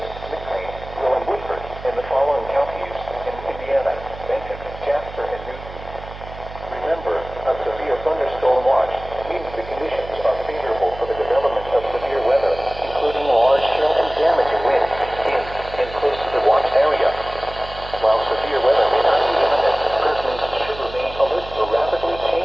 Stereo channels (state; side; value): noise; right; hum, 14 dB below the sound